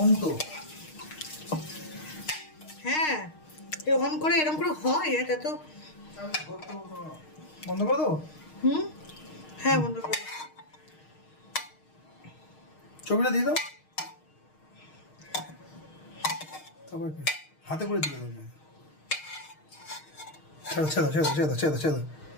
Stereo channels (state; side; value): late; right; 6.5 ms